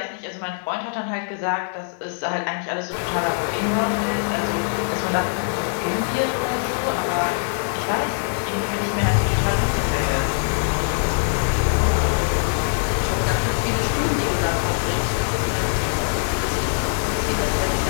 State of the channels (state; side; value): silent; right; 64 dB below the other